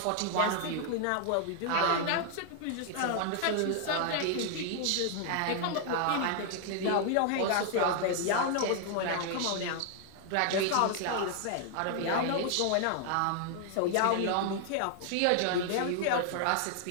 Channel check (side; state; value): both; different; correlation 0.00